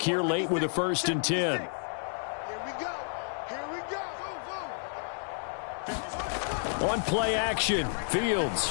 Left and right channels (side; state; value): right; silent; 57 dB below the other